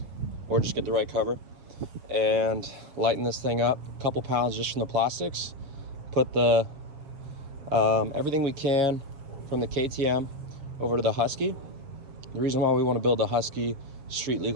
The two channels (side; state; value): left; late; 7.2 ms